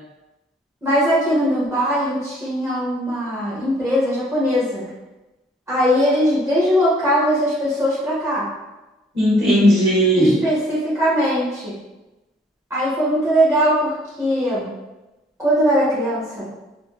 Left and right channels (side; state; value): both; normal; correlation 0.58